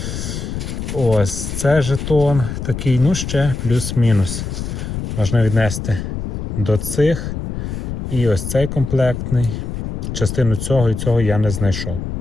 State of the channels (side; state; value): left; noise; rumble, 5 dB below the sound